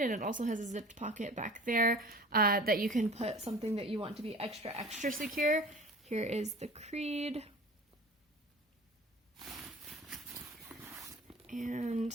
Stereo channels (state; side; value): normal; both; correlation 0.41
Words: and it also has a zipped pocket back there that you can put something that you want to be extra secure. Here is the creed. And